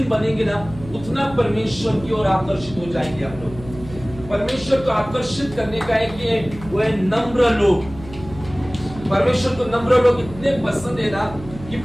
बनेंगे ना, उतना परमेश्वर की ओर आकर्षित हो जाएंगे हम लोग। परमेश्वर को आकर्षित करने का है कि वो है नम्र लोग। परमेश्वर को नम्र लोग इतने पसंद है ना कि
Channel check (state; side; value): noise; right; hum, 15 dB below the sound